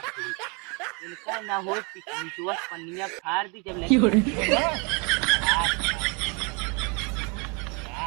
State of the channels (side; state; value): left; quieter; 32.2 dB